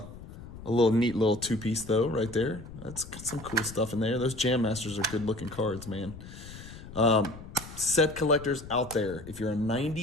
neat little two-piece though, right there. That's got some cool stuff in there. Those Jam Masters are good-looking cards, man. Set collectors out there. If you're a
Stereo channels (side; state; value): left; noise; rumble, 14 dB below the sound